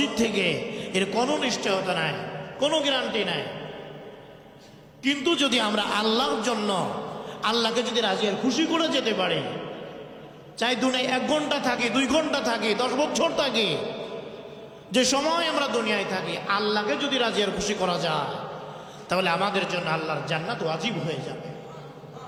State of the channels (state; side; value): identical; both; correlation 1.00